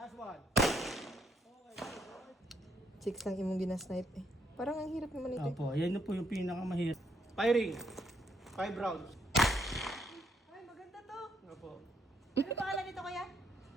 one. Okay. Chicks lang imong ginasnipe eh. Parang ang hirap naman ito. Opo, yan na po yung pinakamahirap. Firing. 5 rounds. Ay, maganda to. Opo. Ano pangalan nito kuya?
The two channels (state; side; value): normal; both; correlation 0.73